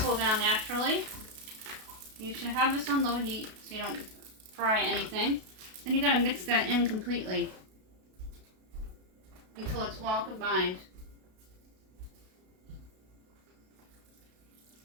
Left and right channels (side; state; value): left; late; 32 ms